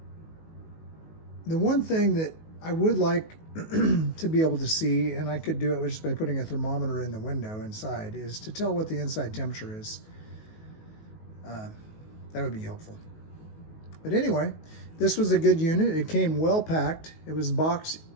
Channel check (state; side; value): late; right; 19 ms